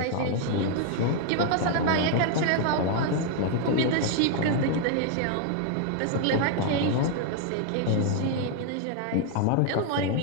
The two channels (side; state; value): both; different; correlation 0.00